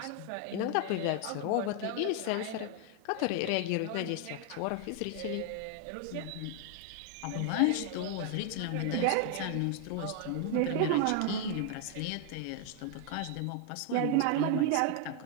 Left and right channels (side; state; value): both; different; correlation 0.00